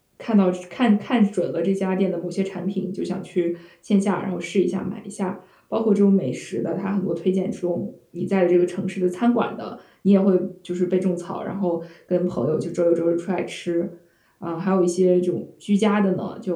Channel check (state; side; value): identical; both; correlation 1.00